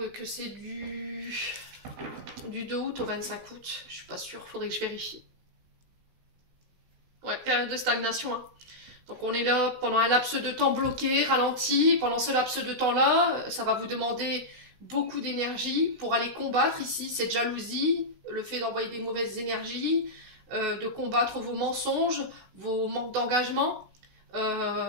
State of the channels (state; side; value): late; left; 16 ms